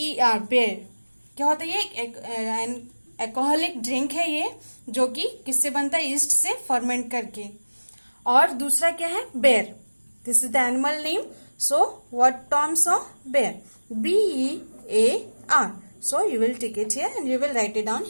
बेर. क्या होता है ये? एक एल्कोहलिक ड्रिंक है ये, जो कि किससे बनता है? ईस्ट से फर्मेंट करके. और दूसरा क्या है? बेर. This is the animal name. So what Tom saw? बेर. BEAR. So you will take it here and you will write it down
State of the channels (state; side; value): inverted; both; correlation -1.00